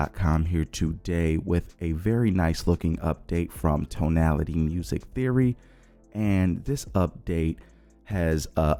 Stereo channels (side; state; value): both; identical; correlation 1.00